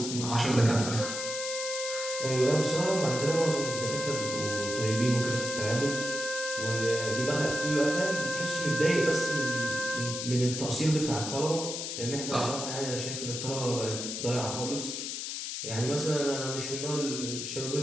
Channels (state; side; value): noise; left; hiss, 5 dB below the sound